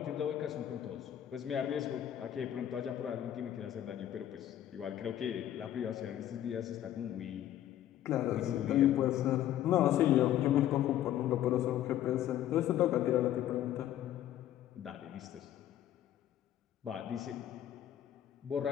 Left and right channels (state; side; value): quieter; right; 11.9 dB